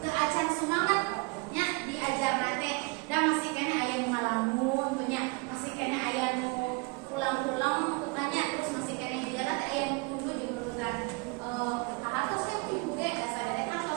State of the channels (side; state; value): left; quieter; 28.7 dB